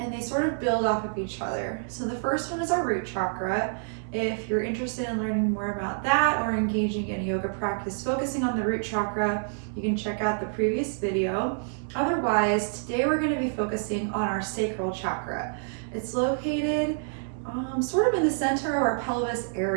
and they sort of build off of each other. So the first one is our root chakra. If you're interested in learning more about that or engaging in a yoga practice focusing on the root chakra, you can check out the previous video. Otherwise, today we're going to be focusing on our sacral chakra. It's located sort of in the center of our pelvis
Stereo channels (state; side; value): silent; left; digital silence